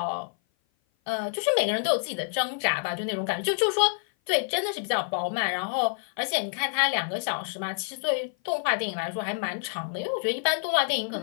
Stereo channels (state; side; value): silent; right; 56 dB below the other